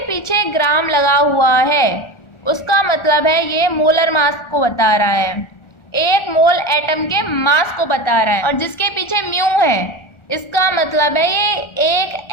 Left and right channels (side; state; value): right; late; 1.4 ms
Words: पीछे ग्राम लगा हुआ है उसका मतलब है ये मोलर मास को बता रहा है, 1 मोल एटम के मास को बता रहा है। और जिसके पीछे म्यू है इसका मतलब है ये 1